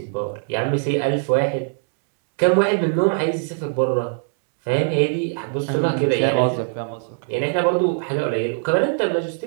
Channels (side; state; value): left; silent; digital silence